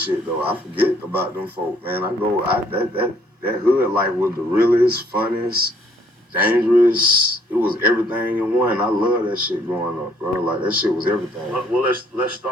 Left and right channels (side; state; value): both; normal; correlation 0.64